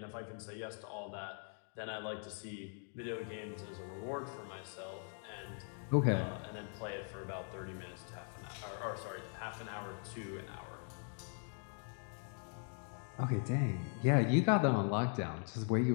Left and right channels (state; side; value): silent; right; 51 dB below the other